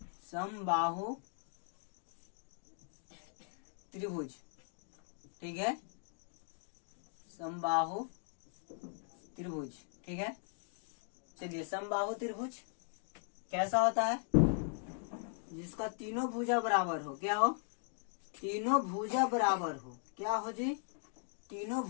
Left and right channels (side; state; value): right; silent; 52 dB below the other